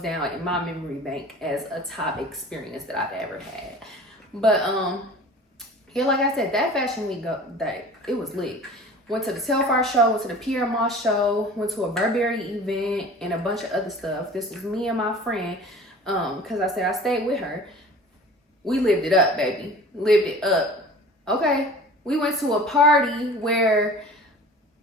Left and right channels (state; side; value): normal; both; correlation 0.42